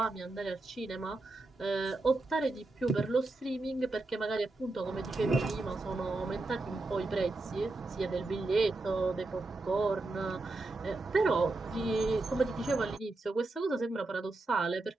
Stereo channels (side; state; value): left; quieter; 3.1 dB